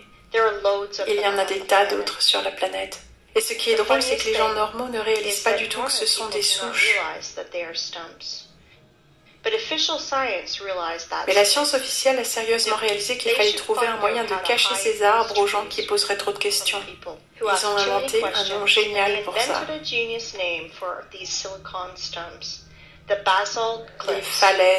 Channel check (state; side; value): identical; both; correlation 1.00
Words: Il y en a des tas d'autres sur la planète. Et ce qui est drôle, c'est que les gens normaux ne réalisent pas du tout que ce sont des souches. Mais la science officielle a sérieusement réalisé qu'il fallait trouver un moyen de cacher ces arbres aux gens qui poseraient trop de questions. Ils ont inventé un nom génial pour ça. les